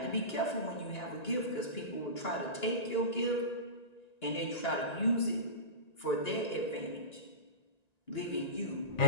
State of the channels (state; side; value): late; right; 1.9 ms